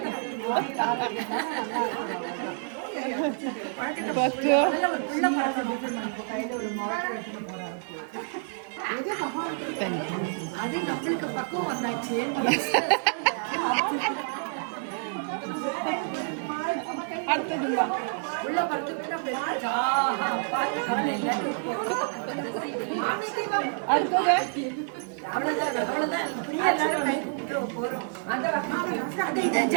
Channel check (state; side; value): silent; left; digital silence